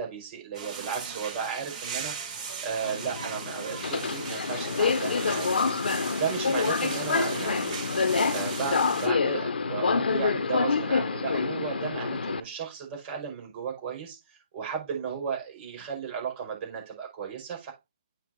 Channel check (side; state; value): both; inverted; correlation -0.60